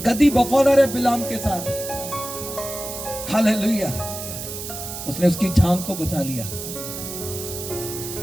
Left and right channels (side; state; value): right; noise; hiss, 8 dB below the sound